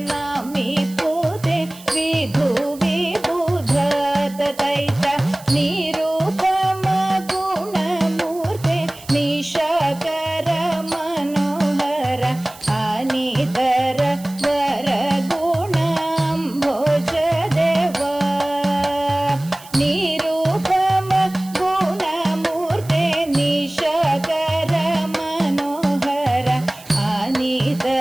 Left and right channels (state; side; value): noise; right; hiss, 20 dB below the sound